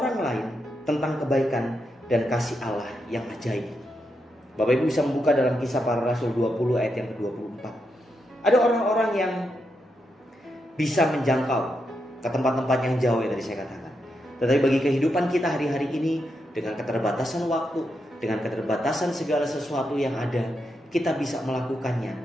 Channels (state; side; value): normal; both; correlation 0.83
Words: lain tentang kebaikan dan kasih Allah yang ajaib. Bapak Ibu bisa membuka dalam Kisah Para Rasul 20 ayat yang ke-24. Ada orang-orang yang bisa menjangkau ke tempat-tempat yang jauh yang tadi saya katakan. Tetapi bagi kehidupan kita hari-hari ini, dengan keterbatasan waktu, dengan keterbatasan segala sesuatu yang ada, kita bisa melakukannya